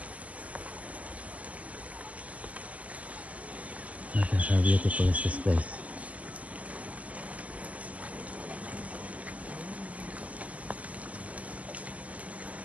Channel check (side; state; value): left; late; 0.068 ms